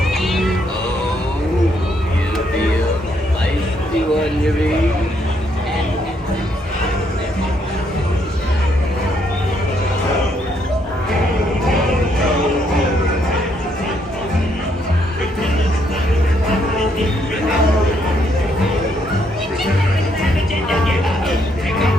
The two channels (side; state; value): both; normal; correlation 0.73